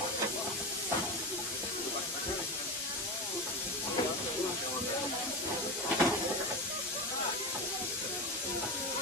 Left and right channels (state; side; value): normal; both; correlation 0.20